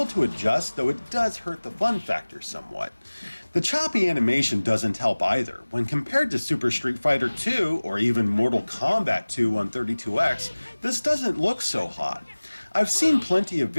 to adjust, though it does hurt the fun factor somewhat. The choppy animation doesn't help either. When compared to Super Street Fighter 2, or even Mortal Kombat 2 on 32X, this doesn't look so hot. I've seen plenty of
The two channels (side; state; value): both; inverted; correlation -1.00